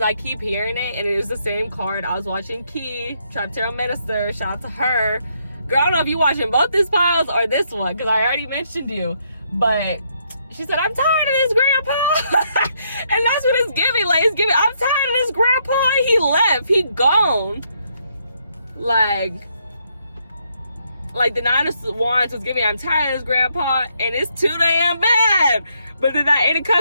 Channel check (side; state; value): both; inverted; correlation -0.74